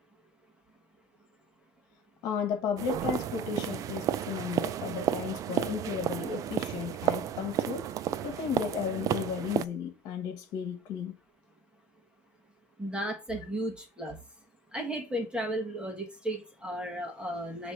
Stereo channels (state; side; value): normal; both; correlation 0.41